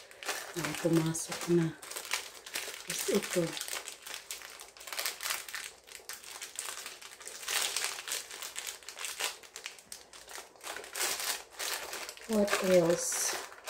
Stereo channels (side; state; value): both; identical; correlation 1.00